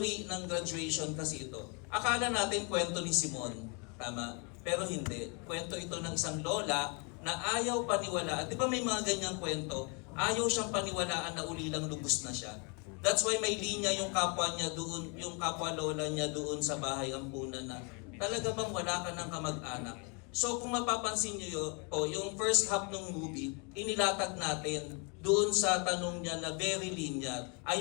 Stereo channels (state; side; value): quieter; right; 33.5 dB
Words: ng graduation kasi ito. Akala natin kwento ni Simon, tama? Pero hindi. Kwento ito ng isang lola na ayaw paniwalaan. Di ba may mga ganyang kwento? Ayaw siyang paniwalaan na ulilang lubos na siya. That's why may linya yung kapwa niya doon, yung kapwa lola niya doon sa bahay ampunan na talaga bang wala ka ng kamag-anak? So kung mapapansin niyo yung first half ng movie, inilatag natin doon sa tanong niya na very linear.